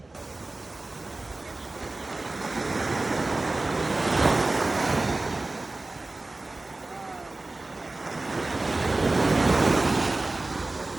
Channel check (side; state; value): left; quieter; 3.1 dB